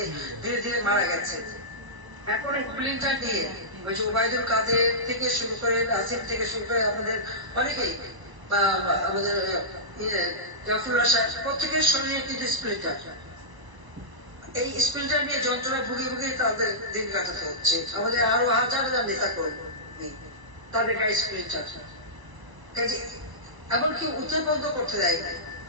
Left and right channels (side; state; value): left; late; 1.0 ms